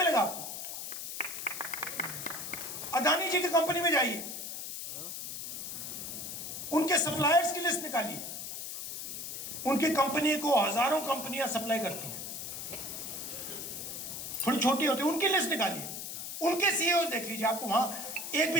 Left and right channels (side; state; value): left; noise; hiss, 7 dB below the sound